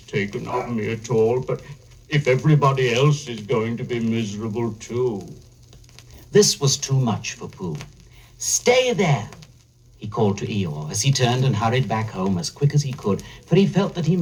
of me at all. But if everybody else is going to be miserable too. This was too much for Pooh. Stay there, he called to Eeyore as he turned and hurried back home as quick as he could, for he felt that he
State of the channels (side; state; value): both; identical; correlation 1.00